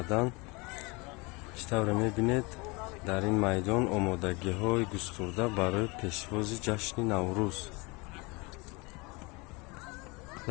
ишставре мебинед дар ин майдон омодагиҳои густурда барои пешвози ҷашни Наврӯз.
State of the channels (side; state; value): right; quieter; 26.8 dB